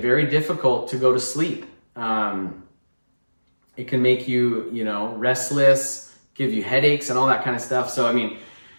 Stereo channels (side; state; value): both; inverted; correlation -1.00